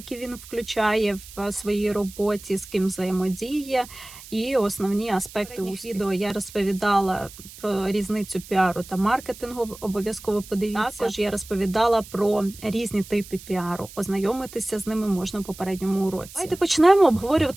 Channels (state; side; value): noise; right; hiss, 17 dB below the sound